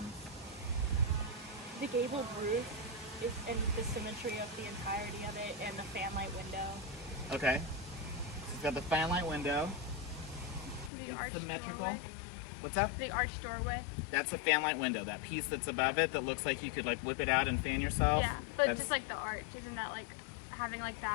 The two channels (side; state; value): right; drops out; at 10.9 s